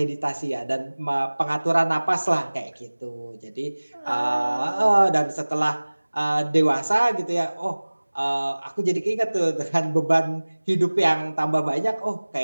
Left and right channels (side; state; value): both; inverted; correlation -1.00